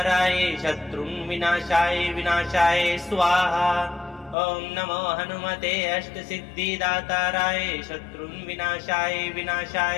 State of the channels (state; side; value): drops out; right; at 4.4 s